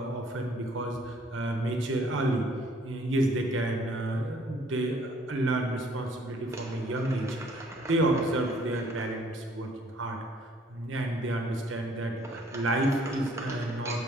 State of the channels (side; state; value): both; normal; correlation 0.60